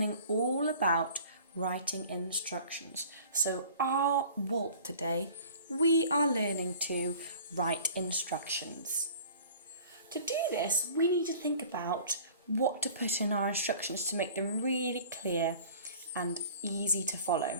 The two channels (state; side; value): inverted; both; correlation -0.46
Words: all about writing instructions. So our walk today, we are learning to write instructions. To do this, we need to think about what to put in our instructions to make them really clear and easy to